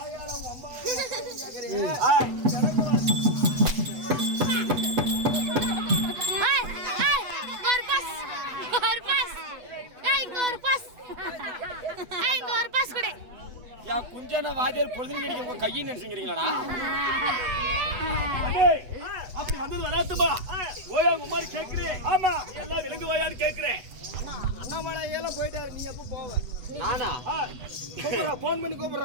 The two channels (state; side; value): late; left; 8.1 ms